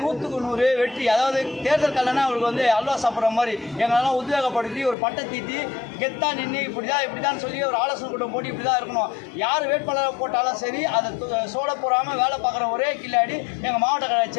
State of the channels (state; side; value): drops out; right; at 5.0 s